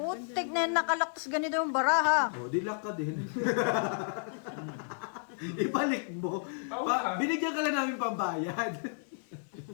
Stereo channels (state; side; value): silent; right; digital silence